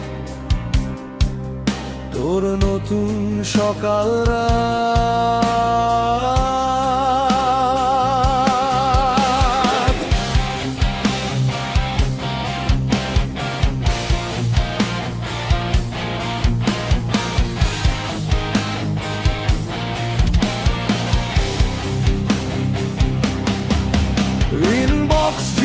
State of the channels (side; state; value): both; identical; correlation 1.00